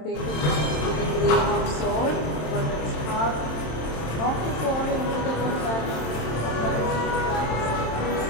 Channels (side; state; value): right; late; 27 ms